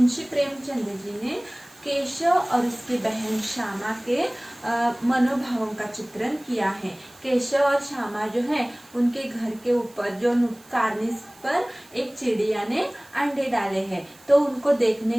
प्रेमचंद जी ने केशव और उसकी बहन श्यामा के मनोभावों का चित्रण किया है। केशव और श्यामा जो है उनके घर के ऊपर जो कार्निस पर एक चिड़िया ने अंडे डाले हैं, तो उनको देखने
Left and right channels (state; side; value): noise; right; hiss, 25 dB below the sound